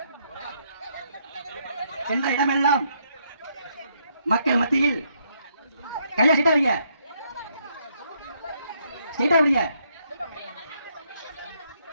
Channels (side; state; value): both; inverted; correlation -0.73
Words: சென்ற இடமெல்லாம் மக்கள் மத்தியில் கையா சீட்டா வைங்க, சீட்டா வைங்க.